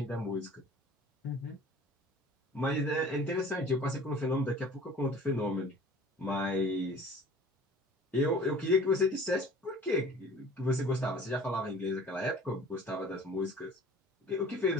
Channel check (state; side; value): normal; both; correlation 0.47